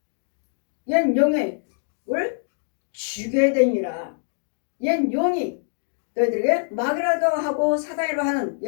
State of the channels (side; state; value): right; silent; digital silence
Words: 옛 용을 죽여야 되니라. 옛 용이 너희들에게 마귀라도 하고 사단이라고 하는